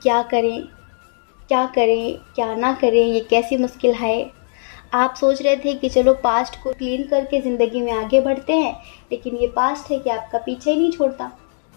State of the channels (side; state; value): right; silent; digital silence